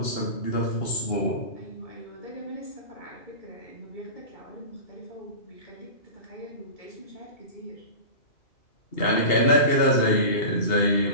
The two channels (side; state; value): right; late; 2.8 ms